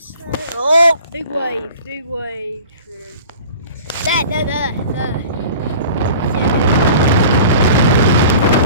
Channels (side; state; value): both; inverted; correlation -0.43